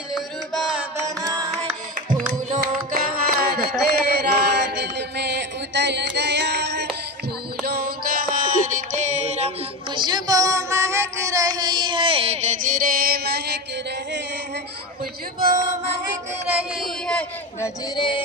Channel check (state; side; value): normal; both; correlation 0.21